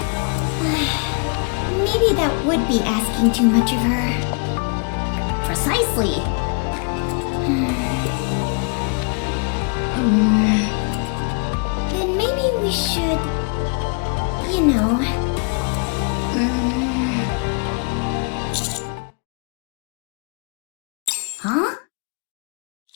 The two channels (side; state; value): right; quieter; 38.2 dB